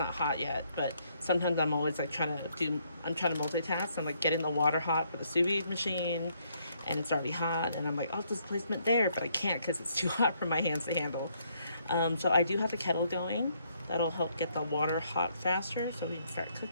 hot yet, but sometimes I'm always like trying to multitask. I'm like getting the water hot for the sous vide machine, and it's already hot, and I'm like, oh, displacement there, but I can't because it's too hot for my hands to handle. So I do have the kettle going. That'll help get the water hot faster so we can start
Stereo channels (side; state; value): both; inverted; correlation -0.71